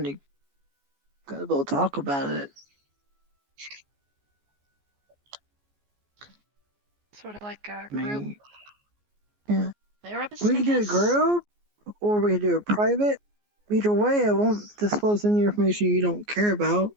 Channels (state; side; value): late; left; 14 ms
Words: you gotta go talk about it. Sort of like a I group mean, yeah. therapist, We I can do a guess? group, or we can do a private. Either way, I won't disclose any information you don't care about,